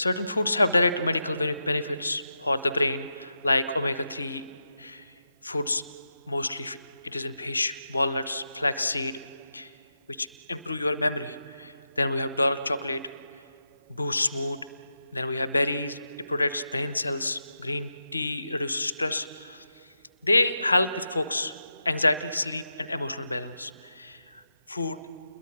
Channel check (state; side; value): inverted; both; correlation -0.88